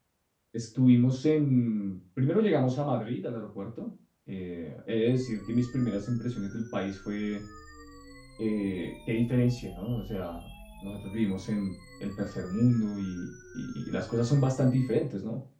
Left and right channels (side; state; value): both; identical; correlation 1.00